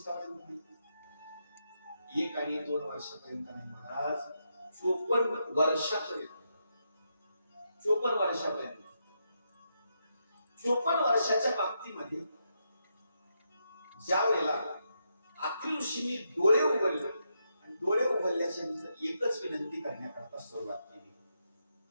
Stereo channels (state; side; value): inverted; both; correlation -0.82